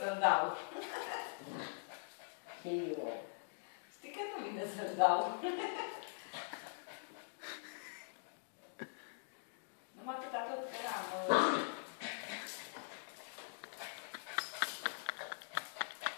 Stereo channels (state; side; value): silent; right; digital silence